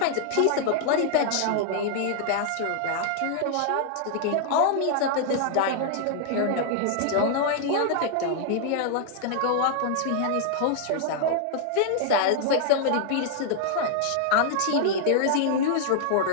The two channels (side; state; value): both; different; correlation -0.01